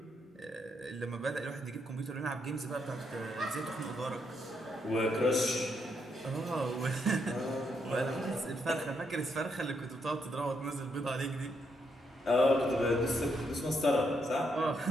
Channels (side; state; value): both; normal; correlation 0.77